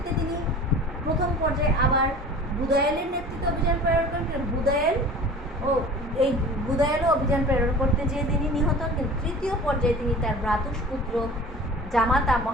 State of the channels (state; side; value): normal; both; correlation 0.41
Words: তিনি প্রথম পর্যায়ে আবার বুদায়েলের নেতৃত্বে অভিযান প্রেরণ করেন, কিন্তু বুদায়েলও অভিযান প্রেরণ করতে যেয়ে তিনি নিহত হন। কিন্তু তৃতীয় পর্যায়ে তিনি তার ভ্রাতুষ্পুত্র জামাতা